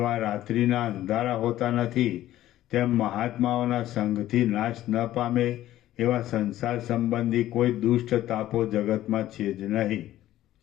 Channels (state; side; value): quieter; right; 13.9 dB